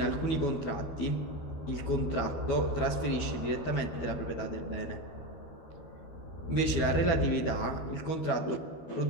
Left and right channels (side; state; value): right; late; 12 ms